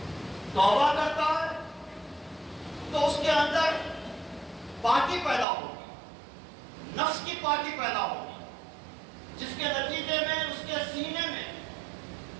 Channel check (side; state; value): left; drops out; at 5.5 s